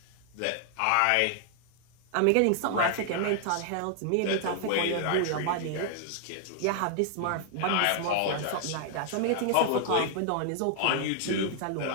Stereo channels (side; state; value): both; different; correlation 0.00